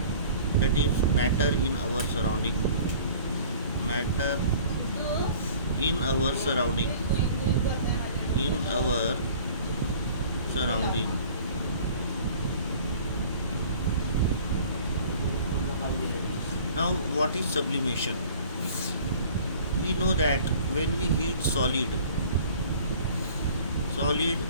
that is matter in our surrounding. Matter in our surrounding. In our surrounding. Now, what is sublimation? We know that when we heat solid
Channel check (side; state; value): both; inverted; correlation -0.48